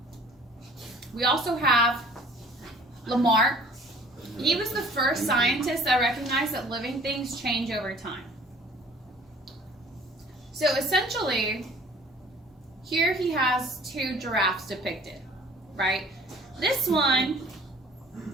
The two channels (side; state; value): both; normal; correlation 0.51